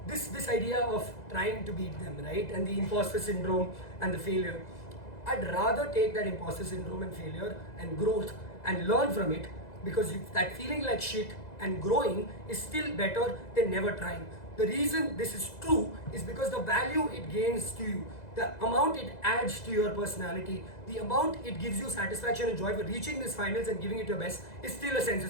this idea of trying to beat them, right, and the imposter syndrome and the failure, I'd rather take that imposter syndrome and failure and growth and learn from it, because that feeling like shit and growing is still better than never trying. The reason this is true is because the value it gains to you, the amount it adds to your personality, the amount it gives you satisfaction and joy for reaching these finals and giving it your best is still a sense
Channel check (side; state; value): right; late; 2.0 ms